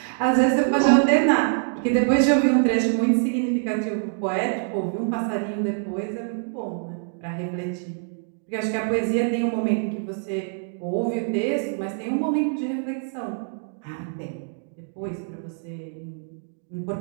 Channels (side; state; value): left; silent; 62 dB below the other